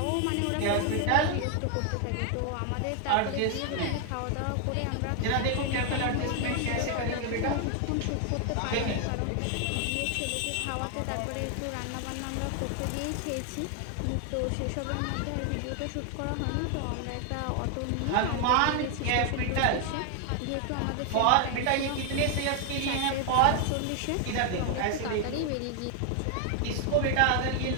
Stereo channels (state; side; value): different; both; correlation 0.00